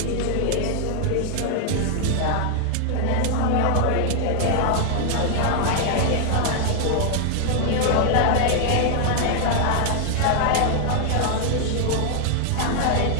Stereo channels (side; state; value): both; different; correlation 0.00